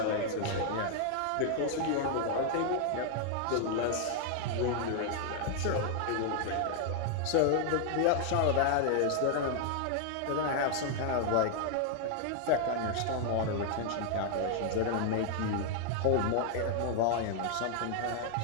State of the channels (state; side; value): different; both; correlation 0.00